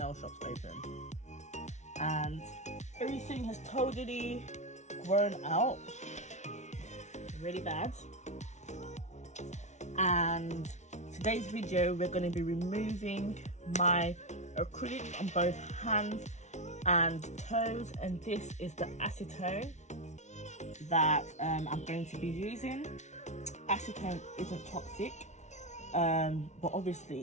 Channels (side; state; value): right; late; 0.33 ms